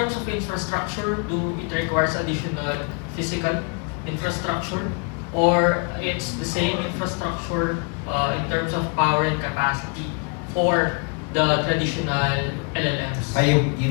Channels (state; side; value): quieter; right; 36.4 dB